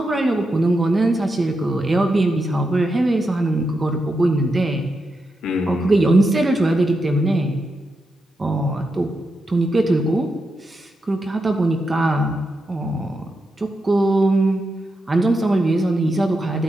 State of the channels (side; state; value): both; normal; correlation 0.86